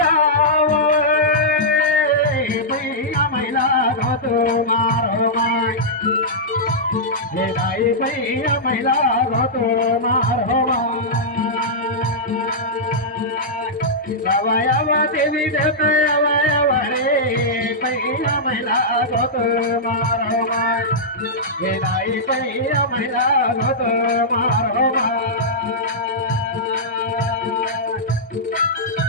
भैया महिला घोट मारो माय, हे दाई भैया महिला घोट मारो माय। अवयव देवी देते अवयव रे भैया महिला घोट मारो माय, हे दाई भैया महिला घोट मारो माय।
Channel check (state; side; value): normal; both; correlation -0.11